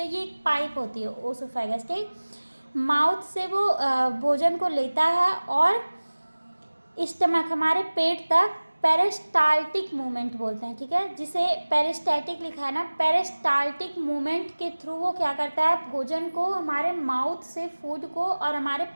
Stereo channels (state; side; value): inverted; both; correlation -1.00